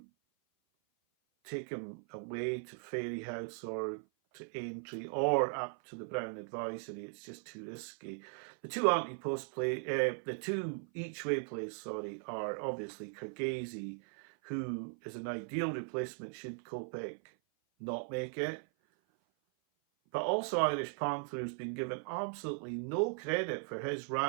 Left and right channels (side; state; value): left; silent; 52 dB below the other